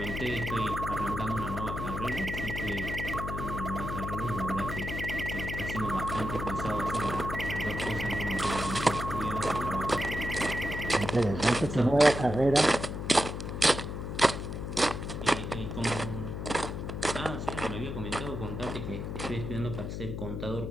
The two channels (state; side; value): noise; left; hum, 5 dB below the sound